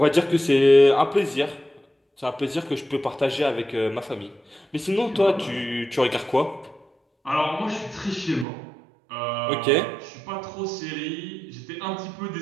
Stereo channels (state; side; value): drops out; left; at 8.5 s